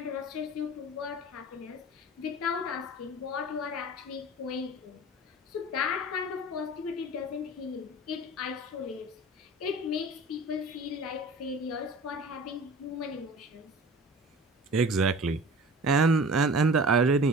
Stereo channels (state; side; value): normal; both; correlation 0.40